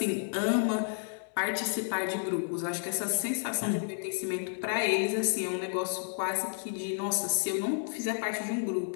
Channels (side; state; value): right; silent; 57 dB below the other